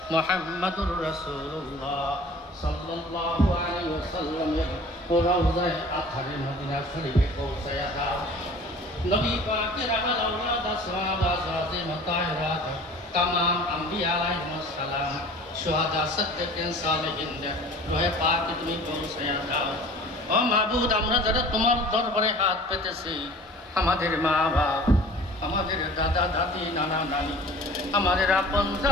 মুহাম্মদুর রাসূলুল্লাহ সাল্লাল্লাহু আলাইহি ওয়াসাল্লাম রওজায়ে আথারে মদিনা শরীফে পৌঁছায়া দাও নবী পাকের আহল আওলাদ সাহাবা জাযিম তাহিরাত तमाम अंबिया अलैहिमुस সালাম শুহাদা সিদ্দিকিন সালেহিন রহে পাক তুমি পৌঁছায়া দাও ও মাবুদ আমরা যারা তোমার দরবারে হাত পেতেছি আমাদের মা বাপ আমাদের দাদা দাদি নানা নানি আমাদের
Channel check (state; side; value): normal; both; correlation 0.45